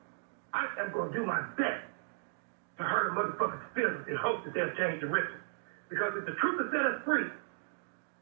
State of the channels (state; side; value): silent; left; digital silence